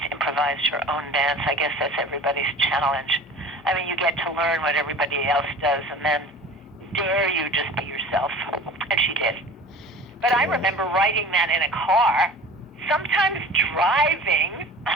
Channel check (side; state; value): both; normal; correlation 0.41